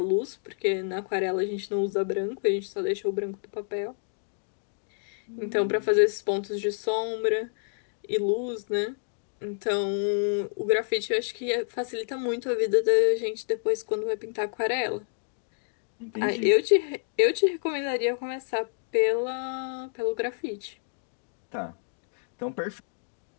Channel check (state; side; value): silent; right; digital silence